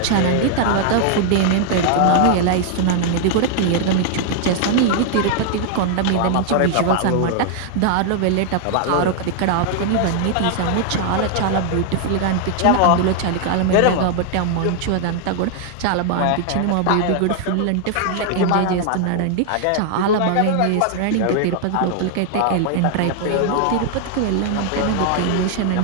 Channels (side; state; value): both; different; correlation 0.00